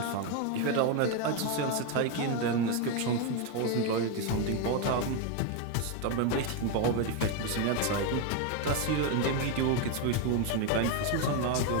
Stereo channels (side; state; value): both; different; correlation 0.02